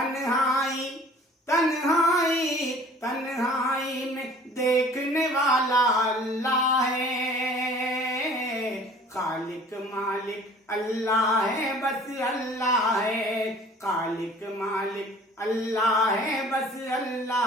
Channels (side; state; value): both; normal; correlation 0.49